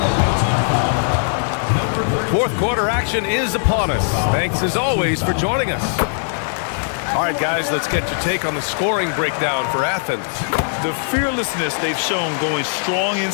Fourth quarter action is upon us. Thanks as always for joining us. All right, guys, let's get your take on the scoring breakdown for Athens. The fearlessness they've shown going strong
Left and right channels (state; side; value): silent; right; digital silence